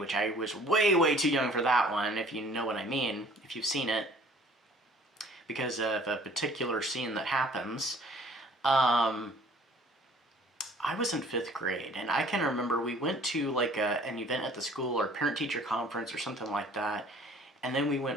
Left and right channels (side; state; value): both; normal; correlation 0.53